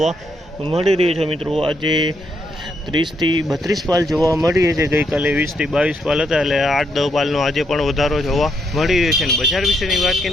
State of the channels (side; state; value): both; normal; correlation 0.76